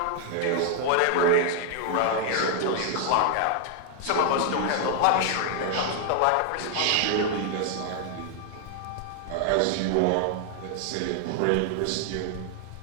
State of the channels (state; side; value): different; both; correlation 0.00